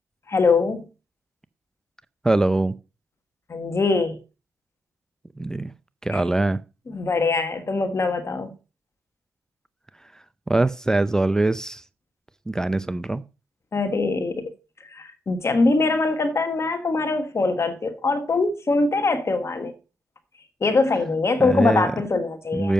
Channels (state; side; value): normal; both; correlation 0.83